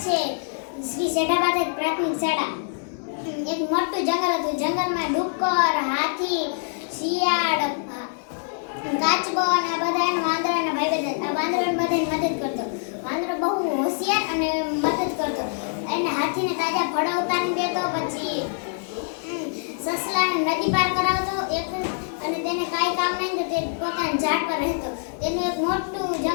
છે શ્રી સેઢાબાદ પ્રાથમિક શાળા. એક મોટું જંગલ હતું. જંગલમાં ડુક્કર, હાથી, શિયાળ, કાચબો અને બધા એના વાંદરાના ભાઈ બધા. આ વાંદરો બધાની મદદ કરતો. વાંદરો બહુ હોશિયાર અને મદદ કરતો. એને હાથીને તાજા ફળો ઉતારી દેતો, પછી સસલાને નદી પાર કરાવતો અને તેને કાંઈ કામ નહીં તો તે પોતાના ઝાડ પર રહેતો. તેનું એક મોટું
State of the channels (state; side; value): silent; right; digital silence